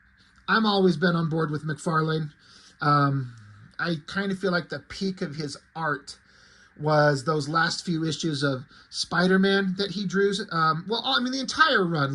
I'm always been on board with McFarlane. I kind of feel like the peak of his art was those last few issues of Spider-Man that he drew. Well, I mean, the entire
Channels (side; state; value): both; identical; correlation 1.00